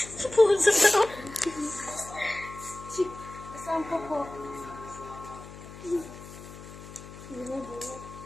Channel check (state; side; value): noise; left; hum, 15 dB below the sound